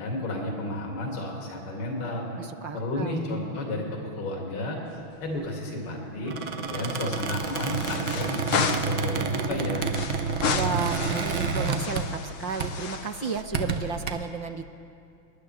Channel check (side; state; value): right; late; 6.1 ms